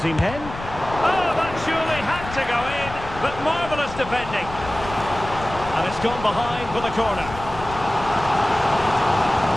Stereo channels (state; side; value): noise; left; rumble, 12 dB below the sound